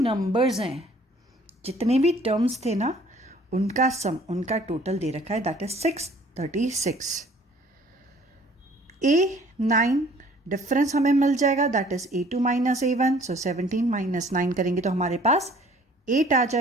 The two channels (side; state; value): both; normal; correlation 0.55